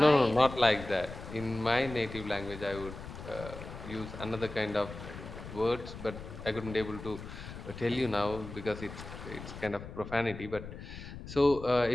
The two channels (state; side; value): noise; left; rumble, 11 dB below the sound